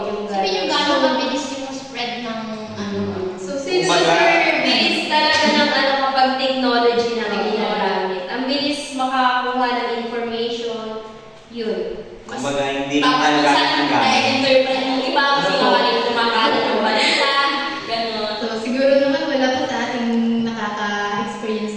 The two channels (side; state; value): both; identical; correlation 1.00